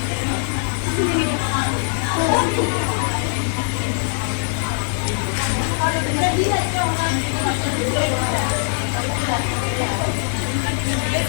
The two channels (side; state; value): right; silent; 58 dB below the other